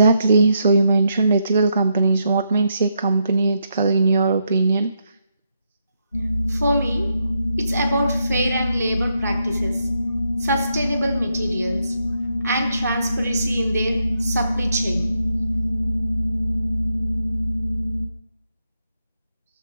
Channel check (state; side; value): inverted; both; correlation -0.80